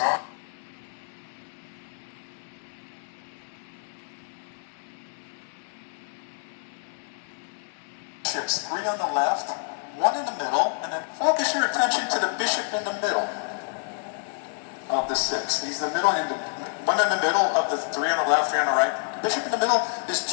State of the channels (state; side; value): silent; right; 60 dB below the other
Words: Bishops, 3 on the left, 1 in the middle, and then focus your attention to the bishop in the middle of the 6. He's the middle, and one in the middle of the 3 on the left, 3 on the right. The bishop in the middle is